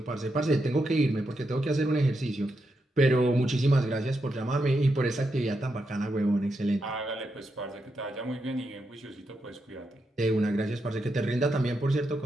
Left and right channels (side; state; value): both; normal; correlation 0.84